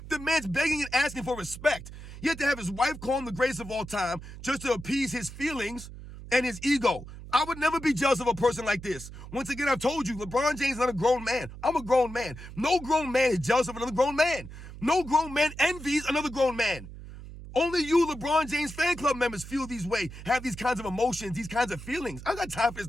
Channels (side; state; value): right; noise; hum, 13 dB below the sound